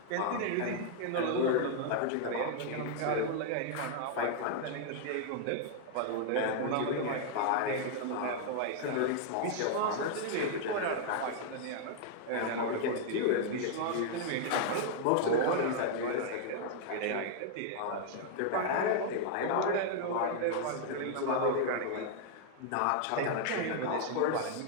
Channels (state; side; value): different; both; correlation -0.01